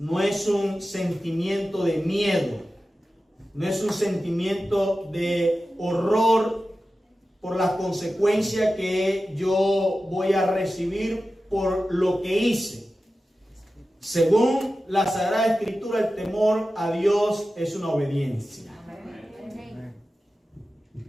es un sentimiento de miedo, no es un sentimiento de horror por las consecuencias que yo voy a recibir por lo que hice. Según la Sagrada Escritura, el temor a Dios es una obediencia.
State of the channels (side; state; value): both; normal; correlation 0.94